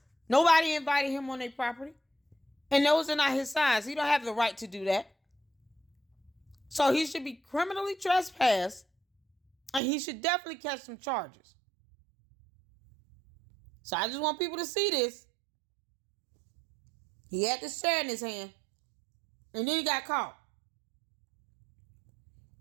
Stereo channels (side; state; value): left; drops out; at 9.8 s